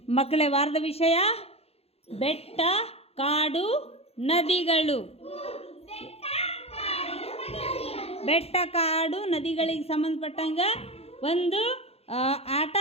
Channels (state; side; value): late; right; 0.29 ms